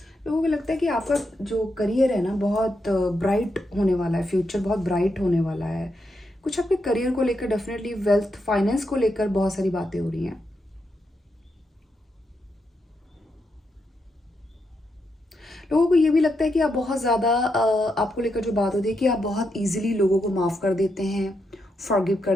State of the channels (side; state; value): both; normal; correlation 0.83